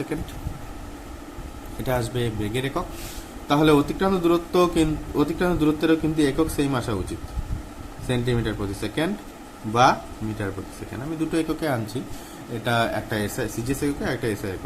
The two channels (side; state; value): both; identical; correlation 1.00